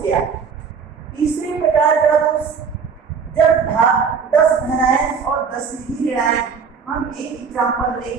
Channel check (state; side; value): quieter; left; 6.0 dB